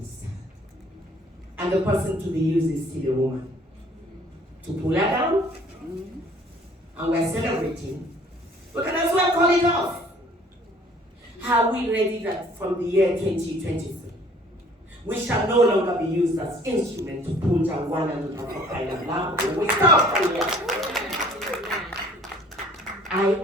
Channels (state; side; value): normal; both; correlation 0.55